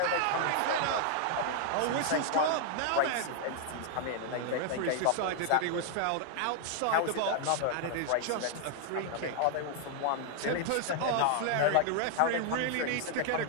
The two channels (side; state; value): both; different; correlation 0.00